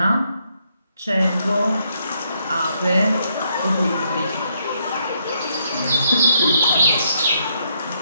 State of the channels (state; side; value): inverted; both; correlation -0.75